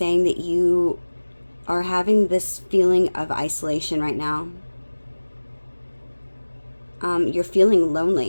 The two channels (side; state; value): both; inverted; correlation -1.00